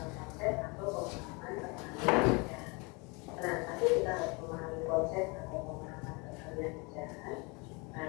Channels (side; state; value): right; quieter; 29.1 dB